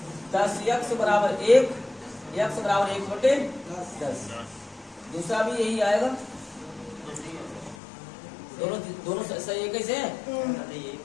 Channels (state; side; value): drops out; right; at 7.8 s